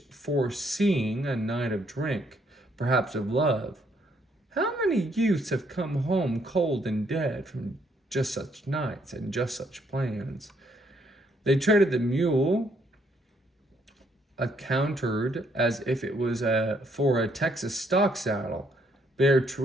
foreseeing a night of drink, perhaps of love. How many youths have come home cold and dead from just such nights and just such plans? They traded the mule, accounted as if it was for a Texas stock saddle, bare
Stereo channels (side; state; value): both; normal; correlation 0.70